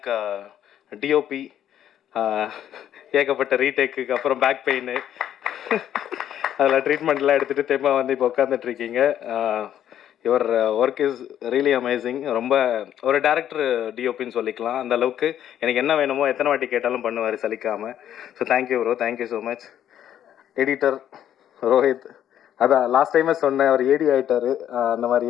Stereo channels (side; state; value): right; quieter; 10.6 dB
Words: DOP. ஏகப்பட்ட ரீடேக்குக்கு அப்புறம் பேக் பெயின் அதில் ட்ரீட்மெண்ட்லாம் எடுத்துகிட்டு தெம்மா வந்து இப்போ உட்காந்துட்ருக்கீங்க. Your work is really amazing. ரொம்ப ஒரு டேரக்டர் டிஓபின்னு சொல்லிக்கலாம். அந்த அளவுக்கு எனக்கு என்ன வேணுமோ எத்தனை வாட்டி கேட்டாலும் பண்ணுவார் சலிக்காமல். So thank you bro, thank you so much. Editor Rohit, அதான் லாஸ்ட் டைமே சொன்னேன், அவர் ஏடி ஆகிட்டார் அந்த